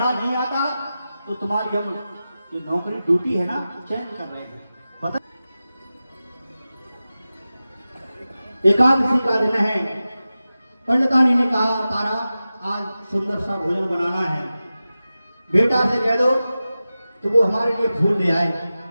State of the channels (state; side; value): inverted; both; correlation -0.94